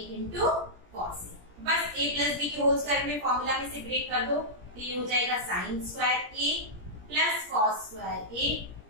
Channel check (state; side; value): late; left; 17 ms